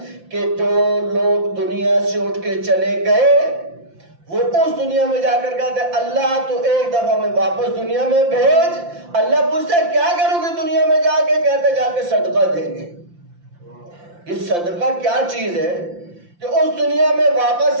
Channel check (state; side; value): late; left; 5.8 ms